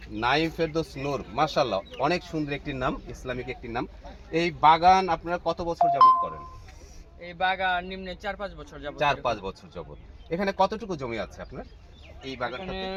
নাইম ফেরদৌস নূর। মাশাআল্লাহ, অনেক সুন্দর একটি নাম, ইসলামিক একটি নাম। এই বাগান আপনারা কত বছর যাবত করেন? এই বাগান নিম্নে 4-5 বছর যাবত। 4-5 বছর যাবত। এখানে কতটুকু জমি আছে আপনার এই বাগানটাতে?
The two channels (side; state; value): both; identical; correlation 1.00